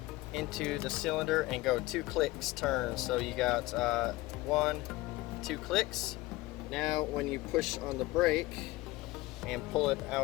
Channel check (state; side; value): quieter; right; 19.3 dB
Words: into the cylinder, and go 2 clicks turn. So you got 1, 2 clicks. Now when you push on the brake and pull it